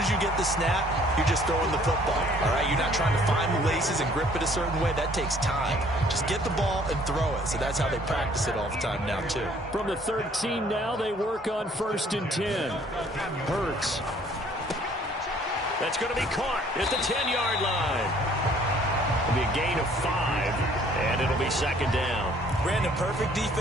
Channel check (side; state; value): both; normal; correlation 0.59